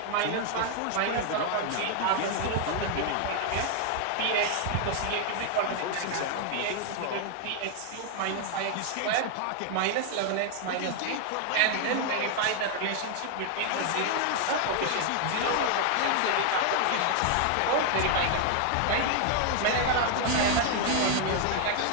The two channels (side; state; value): both; different; correlation 0.00